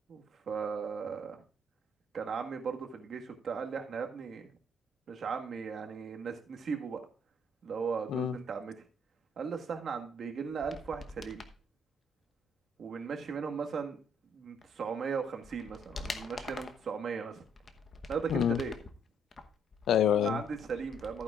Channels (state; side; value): normal; both; correlation 0.66